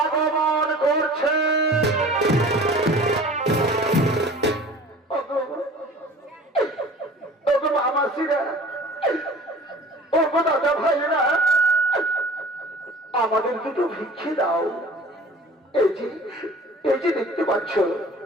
করছে। মামাসিরা, ওগো দাদা ভাইরা, আমাদের দুটো ভিক্ষে দাও। এই যে দেখতে পাচ্ছ,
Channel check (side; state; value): both; normal; correlation 0.44